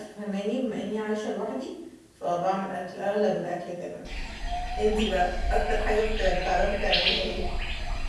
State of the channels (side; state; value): both; identical; correlation 1.00